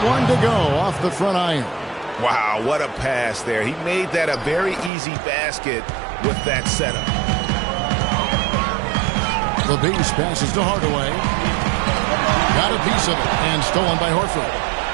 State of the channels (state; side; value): drops out; left; at 4.9 s